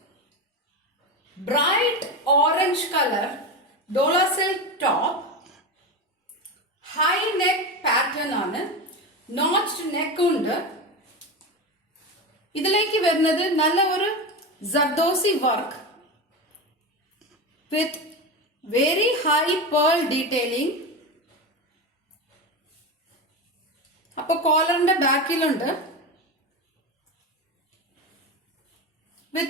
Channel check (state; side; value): normal; both; correlation 0.20